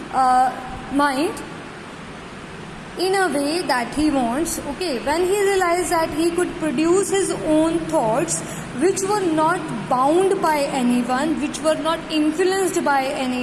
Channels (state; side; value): identical; both; correlation 1.00